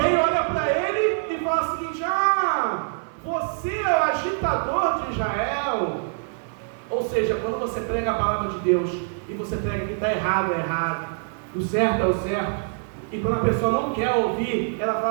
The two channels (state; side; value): silent; left; 60 dB below the other